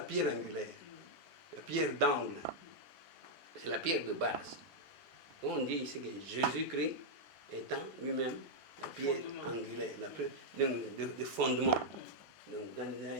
pierre angulaire. La pierre d'angle. C'est la pierre de base. On dit ici que Jésus-Christ étant lui-même la pierre angulaire, la pierre de fondement. Donc dans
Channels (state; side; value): normal; both; correlation -0.04